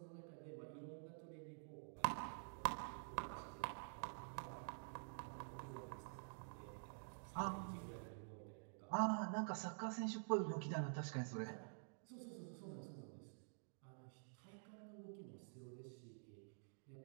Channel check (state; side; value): silent; left; digital silence